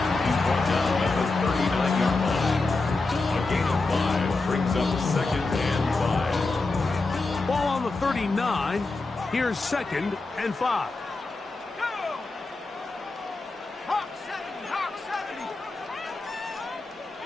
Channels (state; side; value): quieter; right; 3.5 dB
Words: He's brought down at the 39-yard line. A gain of 5 brings up second and 5. Ball on the 39. Here's second and 5. Hawk 70.